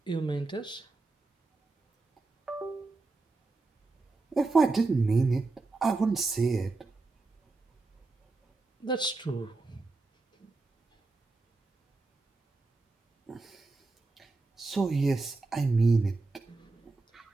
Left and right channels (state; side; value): quieter; left; 3.6 dB